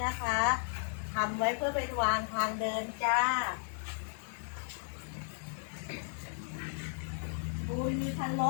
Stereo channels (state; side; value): silent; right; digital silence